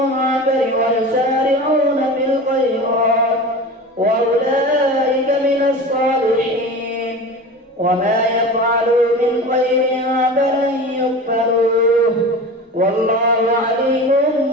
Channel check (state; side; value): normal; both; correlation 0.33